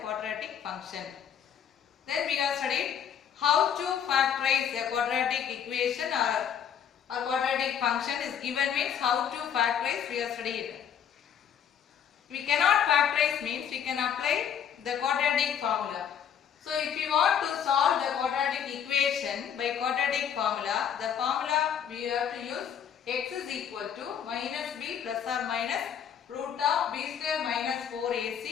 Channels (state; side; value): quieter; right; 8.5 dB